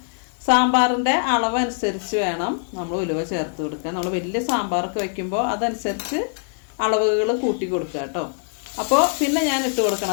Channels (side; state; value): right; silent; 64 dB below the other